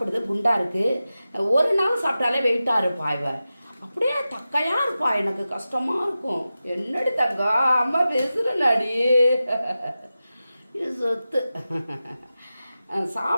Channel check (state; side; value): inverted; both; correlation -0.93